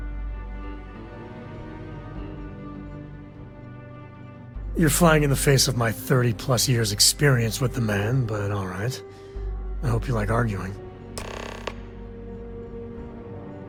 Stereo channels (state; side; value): identical; both; correlation 1.00